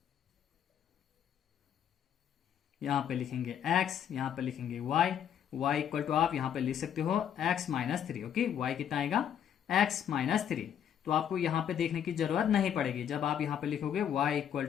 यहां पे लिखेंगे x, यहां पे लिखेंगे y। y इक्वल टू आप यहां पे लिख सकते हो x माइनस 3। ओके, y कितना आएगा, x माइनस 3। तो आपको यहां पे देखने की जरूरत नहीं पड़ेगी। जब आप यहां पे लिखोगे y equal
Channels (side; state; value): right; quieter; 9.2 dB